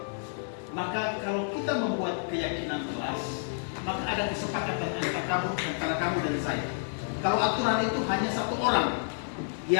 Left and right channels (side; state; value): right; silent; digital silence